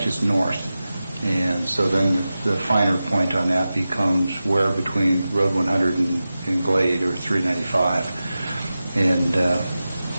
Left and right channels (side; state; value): both; inverted; correlation -0.94